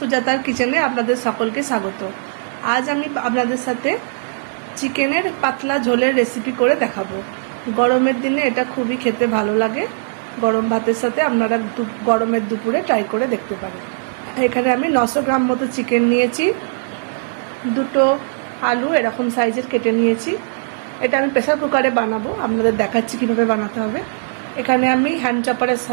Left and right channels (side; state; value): left; silent; 66 dB below the other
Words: কিচেনে আপনাদের সকলকে স্বাগত। আজ আমি আপনাদের সাথে চিকেনের পাতলা ঝোলের রেসিপি করে দেখাবো। গরমের দিনে এটা খুবই খেতে ভালো লাগে। গরম ভাতের সাথে আপনারা গরমের দুপুরে ট্রাই করে দেখতে পারেন। এখানে আমি 900 গ্রাম মতো চিকেন নিয়েছি, দুটো আলু এরকম সাইজের কেটে নিয়েছি। এটা আমি প্রেসার কুকারে বানাবো, আপনাদের দেখাচ্ছি কীভাবে বানাতে হবে। এখানে আমি হ্যান্ড চপারের